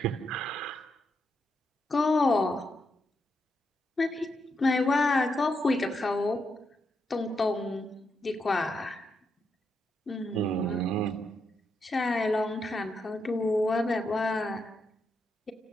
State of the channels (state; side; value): normal; both; correlation 0.82